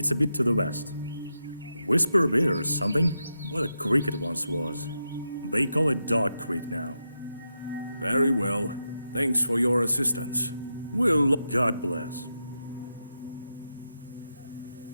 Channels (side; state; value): both; inverted; correlation -0.87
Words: a bit to the west. Whisper a bit or something? What a creek it once was. They call it Dog Creek now. Very well. Thanks for your assistance. We'll... God bless.